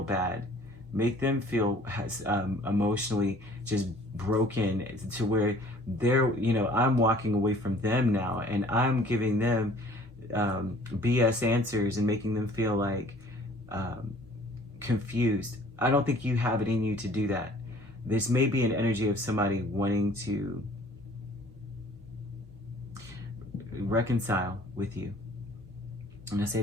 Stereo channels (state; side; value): normal; both; correlation 0.53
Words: bad, make them feel emotionally just broken to where they're, I'm walking away from them now, and I'm giving them BS answers and making them feel like confused. I don't think you have it in you to do that. This may be an energy of somebody wanting to reconcile with you. And I say